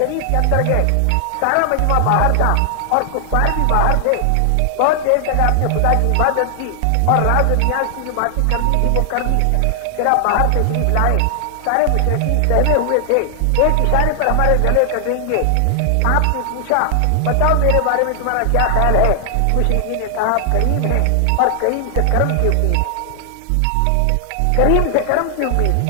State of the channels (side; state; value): both; different; correlation 0.00